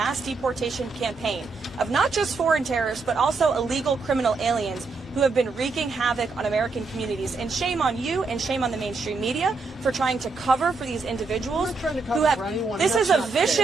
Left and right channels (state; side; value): quieter; left; 4.1 dB